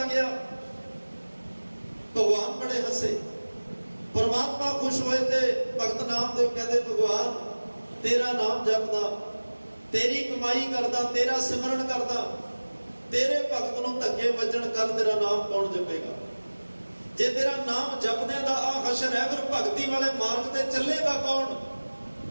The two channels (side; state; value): both; inverted; correlation -1.00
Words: ਗਿਆ। ਭਗਵਾਨ ਬੜੇ ਹੱਸੇ, ਪਰਮਾਤਮਾ ਖੁਸ਼ ਹੋਏ ਤੇ ਭਗਤ ਨਾਮਦੇਵ ਕਹਿੰਦੇ, ਭਗਵਾਨ ਤੇਰਾ ਨਾਮ ਜਪਦਾ, ਤੇਰੀ ਕਮਾਈ ਕਰਦਾ, ਤੇਰਾ ਸਿਮਰਨ ਕਰਦਾ, ਤੇਰੇ ਭਗਤ ਨੂੰ ਧੱਕੇ ਵੱਜਣ, ਕੱਲ ਤੇਰਾ ਨਾਮ ਕੌਣ ਜਪੇਗਾ? ਜੇ ਤੇਰਾ ਨਾਮ ਜਪਦਿਆਂ ਦਾ ਆ ਹਸ਼ਰ ਹੈ, ਫਿਰ ਭਗਤੀ ਵਾਲੇ ਮਾਰਗ ਤੇ ਚੱਲੇਗਾ ਕੌਣ?